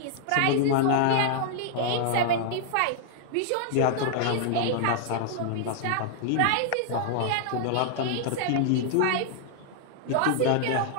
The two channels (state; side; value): different; both; correlation -0.01